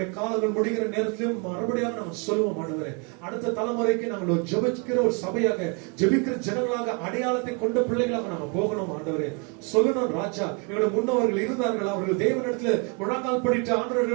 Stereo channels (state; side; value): quieter; left; 34.4 dB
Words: காலங்கள் முடிகிற நேரத்திலும் மறுபடியும் நாங்க சொல்லுவோம் ஆண்டவரே. அடுத்த தலைமுறைக்கு நாங்கள் ஒரு ஜெபிக்கிற ஒரு சபையாக, ஜெபிக்கிற ஜனங்களாக, அடையாளத்தை கொண்ட பிள்ளைகளாக நாங்க போகணும் ஆண்டவரே. சொல்லணும் ராஜா, எங்களுடைய முன்னவர்கள் இருந்தார்கள், அவர்கள் தேவனிடத்துல முழங்கால் படிட்டு